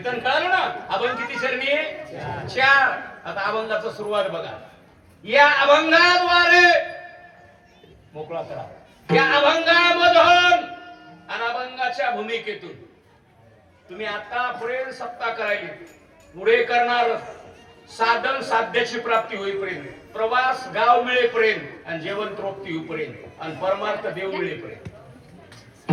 कळालं ना. अभंग किती शरणी? 4. आता अभंगाचं सुरुवात बघा. या अभंगाद्वारे मोकळा करा. या अभंगामधून आणि अभंगाच्या भूमिकेतून तुम्ही आतापर्यंत सत्ता करायली, पुढे करणार साधन साध्याची प्राप्ती होईपर्यंत, प्रवास गाव मिळेपर्यंत आणि जेवण तृप्ती होईपर्यंत आणि परमार्थ देव मिळेपर्यंत.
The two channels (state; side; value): identical; both; correlation 1.00